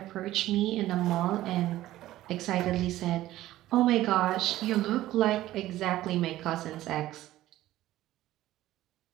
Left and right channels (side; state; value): left; quieter; 15.0 dB